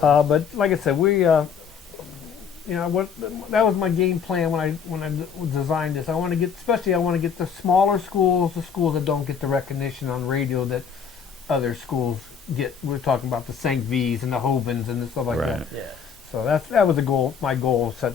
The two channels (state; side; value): quieter; right; 6.8 dB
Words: but like I said, we, that was my game plan when I designed this. I want to get the smaller schools, the schools that don't get the recognition on radio that other schools get. We're talking about the St. V's and the Hovens and stuff like that. Yeah. So that was the goal. My goal to